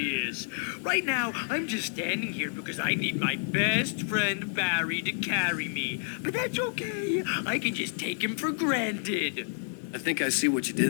Right now, I'm just standing here because I need my best friend Barry to carry me. But that's okay. I can just take him for granted. I think I see what you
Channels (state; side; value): silent; right; 58 dB below the other